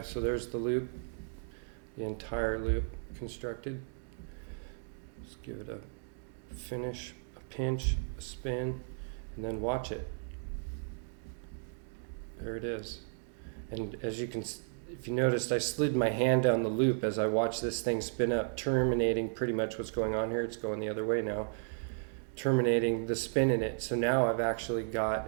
so there's the loop, the entire loop constructed. Just give it a finish, a pinch, a spin, and then watch it. There it is. And as you can, if you noticed, I slid my hand down the loop as I watched this thing spin up, terminating pretty much what's going on here. It's going the other way now, terminating the spin in it. So now I've actually got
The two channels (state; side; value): silent; left; digital silence